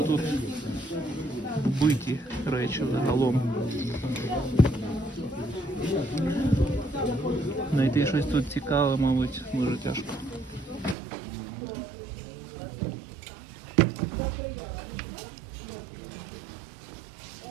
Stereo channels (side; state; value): left; drops out; at 11.0 s